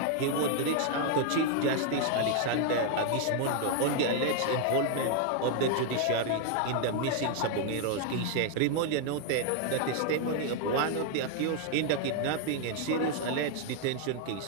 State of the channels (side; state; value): both; different; correlation 0.00